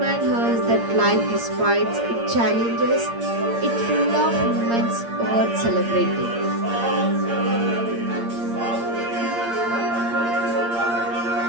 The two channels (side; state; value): left; late; 8.6 ms